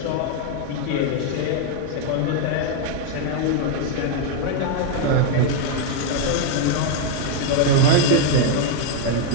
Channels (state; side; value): different; both; correlation 0.00